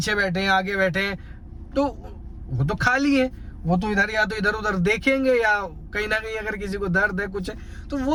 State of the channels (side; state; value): both; identical; correlation 1.00